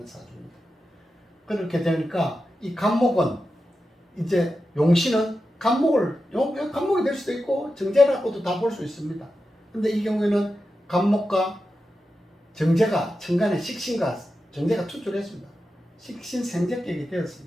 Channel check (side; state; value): both; normal; correlation 0.90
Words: 사주입니다. 그렇게 되니까 이 간목은 이제 용신은 간목이 될 수도 있고 정제라고도 다 볼 수 있습니다. 근데 이 경우에는 간목과 정제가 천간에 식신과 정제가 투출했습니다. 식신생제격이